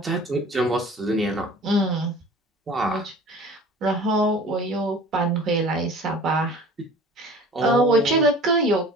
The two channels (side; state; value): both; normal; correlation 0.44